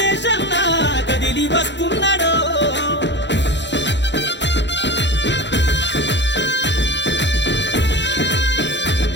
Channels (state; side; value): late; right; 0.52 ms